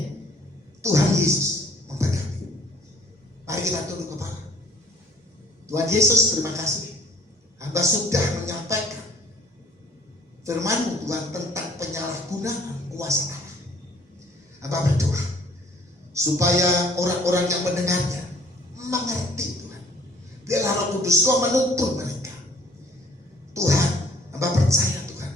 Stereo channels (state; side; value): normal; both; correlation 0.56